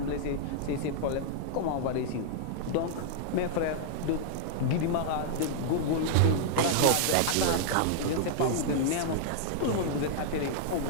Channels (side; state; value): both; different; correlation -0.01